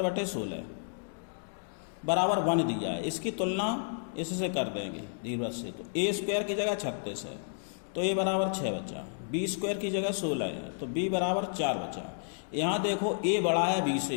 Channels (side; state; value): right; silent; digital silence